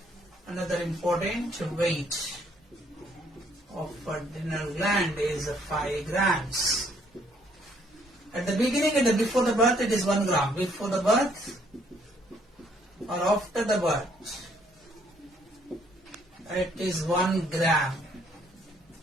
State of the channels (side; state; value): both; normal; correlation 0.66